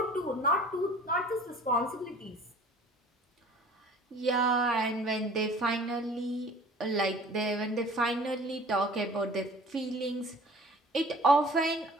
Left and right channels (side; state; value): both; normal; correlation 0.47